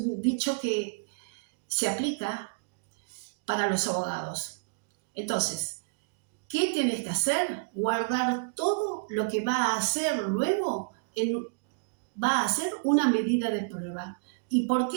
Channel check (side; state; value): left; quieter; 35.3 dB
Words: dicho que se aplica para los abogados. Entonces, ¿qué tienes que hacer? Guardar todo lo que va a hacer luego, va a ser una medida de prueba. ¿Y por